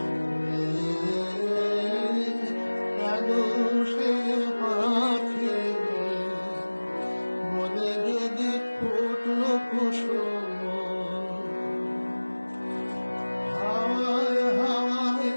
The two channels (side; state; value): both; inverted; correlation -1.00